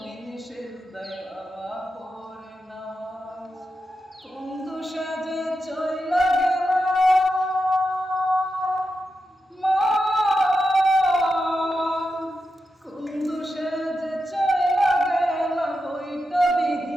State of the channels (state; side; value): normal; both; correlation 0.88